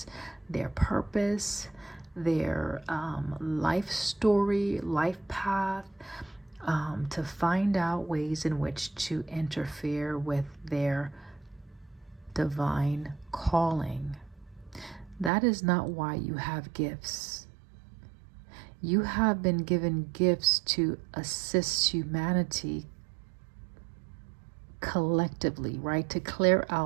their purpose, their life story, life path, to find out ways in which to interfere with their divine calling. That is not why you have gifts. You have been given gifts to assist humanity collectively, right? To clear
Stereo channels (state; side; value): drops out; left; at 15.3 s